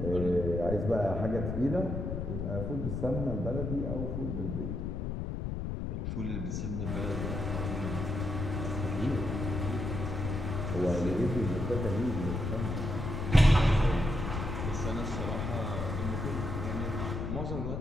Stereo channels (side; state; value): left; noise; rumble, 3 dB below the sound